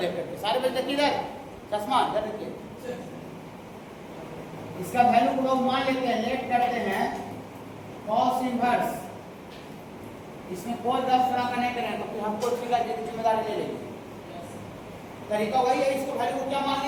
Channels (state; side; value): identical; both; correlation 1.00